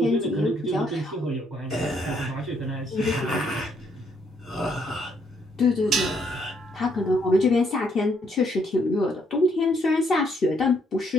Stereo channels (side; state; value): both; normal; correlation 0.71